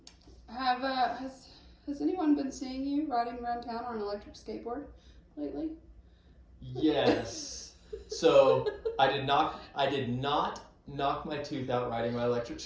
Has anyone been seeing you riding around town on an electric skateboard lately? Yes. So I did not knock my tooth out riding my electric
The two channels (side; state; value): both; identical; correlation 1.00